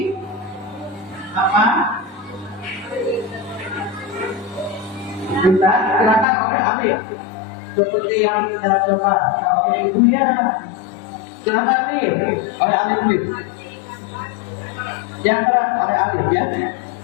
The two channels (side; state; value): right; drops out; at 6.2 s